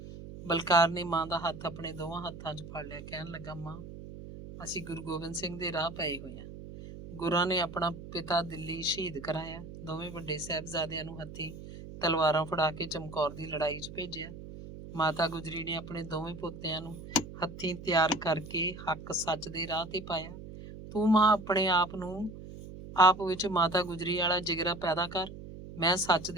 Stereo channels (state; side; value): noise; right; hum, 12 dB below the sound